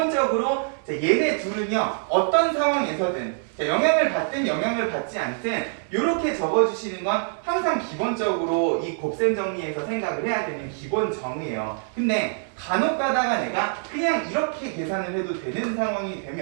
얘네 둘은요 어떤 상황에서든 영향을 받든 영향을 받지 않든 이렇게 적어주시는 건 항상 기본적으로 이 곱셈 정리에서 생각을 해야 되는 기본 정의예요. 근데 간혹 가다가 내가 그냥 이렇게 계산을 해도 되는 상황이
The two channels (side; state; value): left; silent; 57 dB below the other